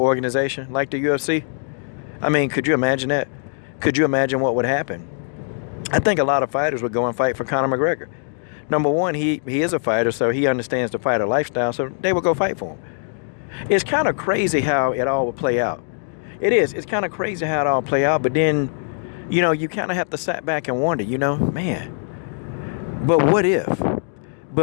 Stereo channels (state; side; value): silent; right; 65 dB below the other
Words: like the UFC? I mean, could you imagine that? Could you imagine what would happen? I think a lot of fighters would go and fight for Conor McGregor. Number one, he is a fighter, so he understands the fighter lifestyle, so they would go fight for him. It's kind of crazy how it all would play out. It is. It's kind of crazy how it all play out, but then, you kind of have to sit back and wonder, man, but what if?